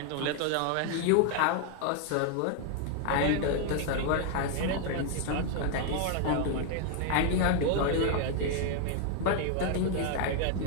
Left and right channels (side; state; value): both; different; correlation 0.00